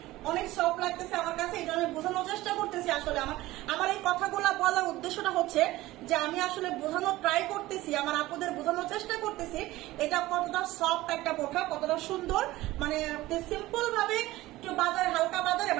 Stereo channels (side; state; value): left; quieter; 17.6 dB